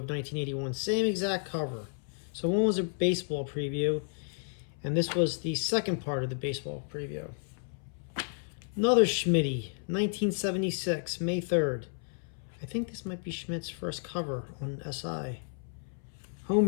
1981. Same exact cover. So one was a baseball preview, and this was the second part of the baseball preview. Another Schmitty, 1976, May 3rd. I think this might be Schmidt's first cover on SI.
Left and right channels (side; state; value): right; silent; 56 dB below the other